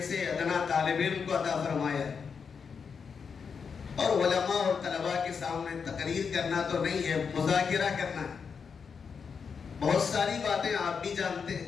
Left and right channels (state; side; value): quieter; right; 6.0 dB